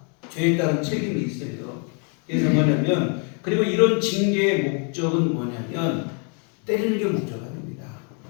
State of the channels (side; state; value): right; quieter; 39.1 dB